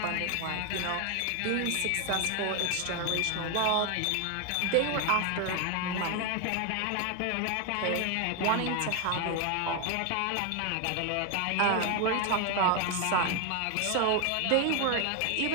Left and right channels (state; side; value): different; both; correlation 0.01